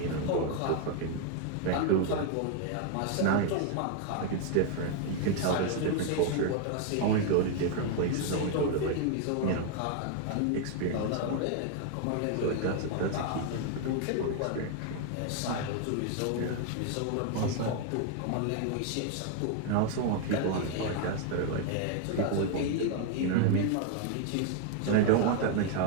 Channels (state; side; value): different; both; correlation 0.00